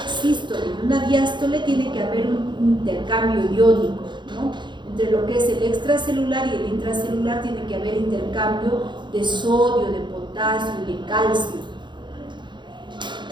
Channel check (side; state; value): left; late; 0.22 ms